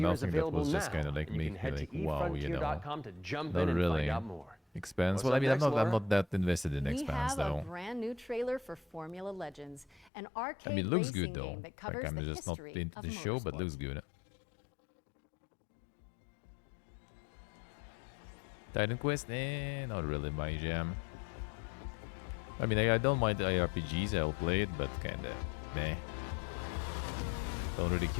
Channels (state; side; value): drops out; right; at 10.1 s